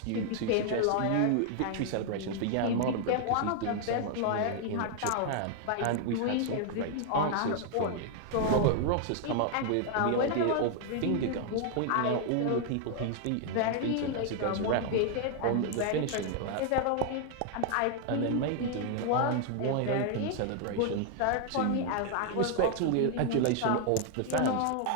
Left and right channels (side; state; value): both; different; correlation 0.00